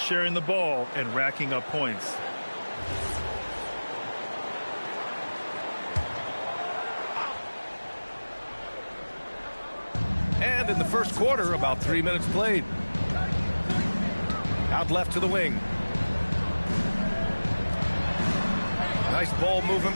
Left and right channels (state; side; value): inverted; both; correlation -1.00